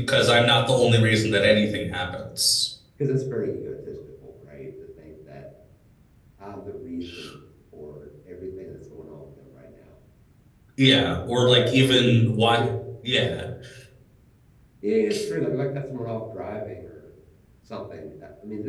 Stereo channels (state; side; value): identical; both; correlation 1.00